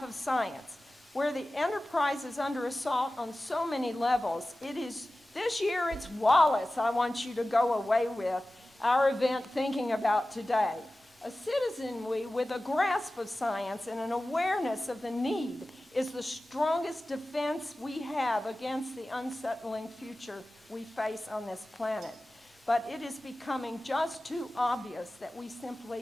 of science. Where the enterprise is under assault on so many levels, this year it's Wallace I want you to go away with our event thinking about today. A citizenry with a grasp of science and an awareness of the need is the strongest defense we have against the unsettling future we face on this planet. But it is becoming just too obvious that we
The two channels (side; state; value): both; normal; correlation 0.96